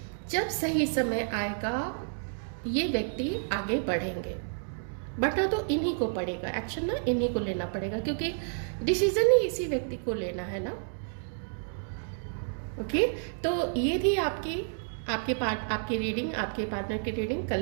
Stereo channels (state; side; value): silent; left; digital silence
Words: जब सही समय आएगा ये व्यक्ति आगे बढ़ेंगे, बढ़ना तो इन्हीं को पड़ेगा, एक्शन ना इन्हीं को लेना पड़ेगा, क्योंकि डिसीजन ही इसी व्यक्ति को लेना है ना। ओके, तो ये थी आपकी रीडिंग, आपके पार्टनर की रीडिंग,